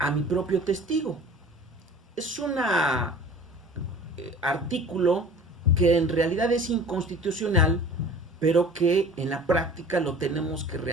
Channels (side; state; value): both; normal; correlation 0.44